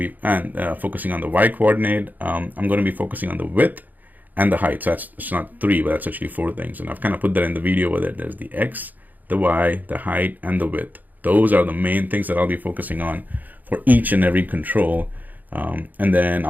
focusing on the Y coordinate. I'm going to be focusing on the width and the height. So it's not three, but that's actually four things. And I've kind of put that in the video where there's the X, the Y, the height, and the width. Those are the main things that I'll be focusing on for each and every control. And then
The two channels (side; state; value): left; late; 0.083 ms